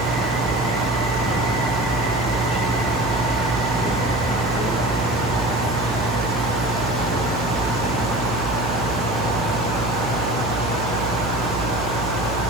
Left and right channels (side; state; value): right; noise; hum, 5 dB below the sound